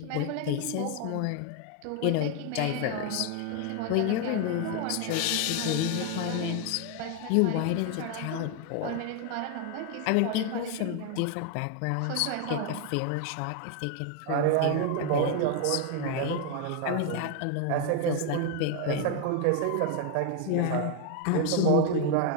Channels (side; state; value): both; different; correlation 0.00